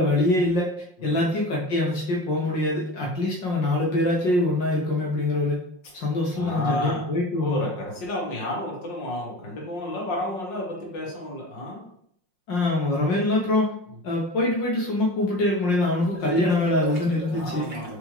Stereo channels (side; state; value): right; late; 5.6 ms